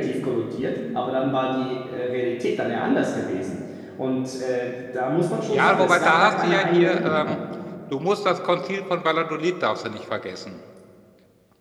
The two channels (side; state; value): both; identical; correlation 1.00